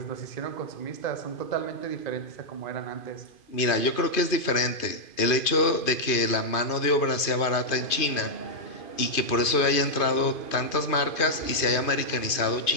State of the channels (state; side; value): late; right; 2.5 ms